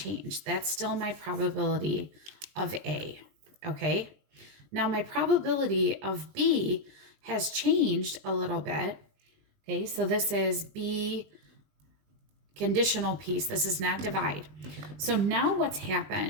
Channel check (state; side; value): late; left; 20 ms